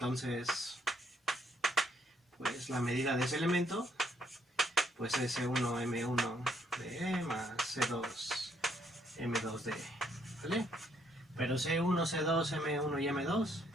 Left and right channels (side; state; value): both; normal; correlation 0.70